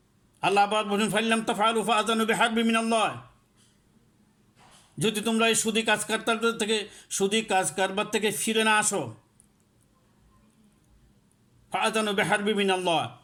আল্লাহ আবার বলেন ফাইল্লাম তাফআলু ফাআযানু বিহারবিন মিনাল্লাহ, যদি তোমরা এই সুদী কাজ কারবার থেকে ফিরে না আসো, ফাআযানু বিহারবিন মিনাল্লাহ,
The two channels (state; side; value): identical; both; correlation 1.00